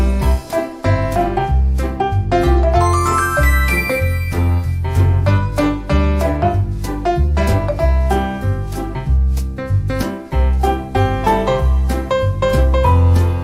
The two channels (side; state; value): both; identical; correlation 1.00